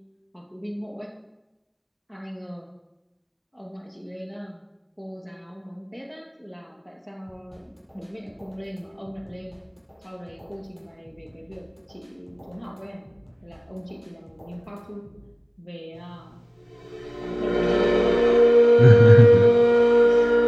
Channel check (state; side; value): identical; both; correlation 1.00